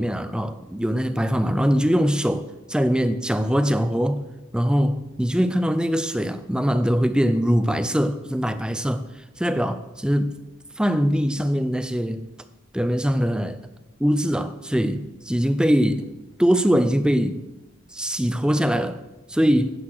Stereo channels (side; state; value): both; normal; correlation 0.94